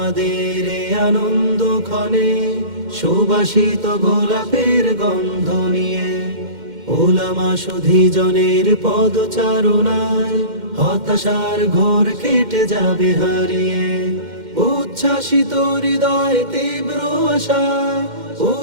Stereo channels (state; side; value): late; left; 2.1 ms